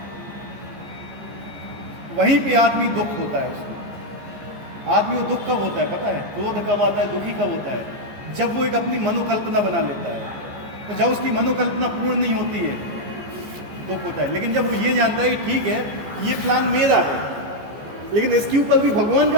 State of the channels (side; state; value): left; late; 14 ms